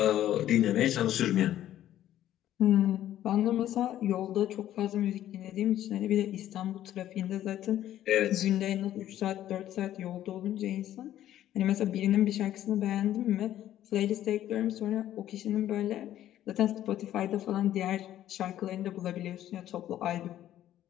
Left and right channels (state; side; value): quieter; right; 12.4 dB